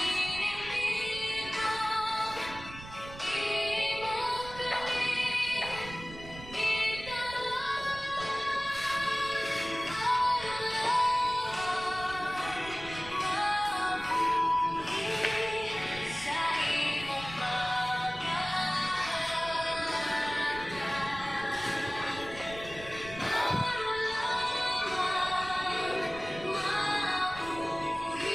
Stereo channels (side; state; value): right; noise; rumble, 15 dB below the sound